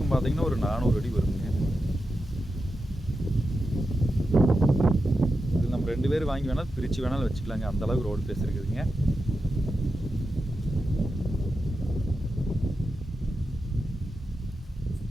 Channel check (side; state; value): both; normal; correlation 0.89